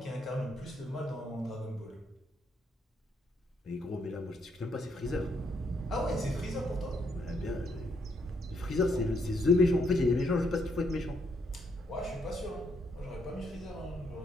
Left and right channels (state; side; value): normal; both; correlation 0.74